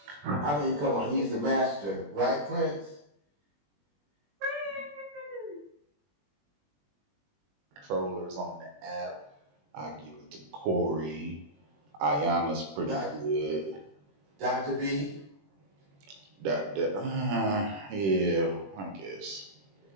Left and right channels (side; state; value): left; late; 21 ms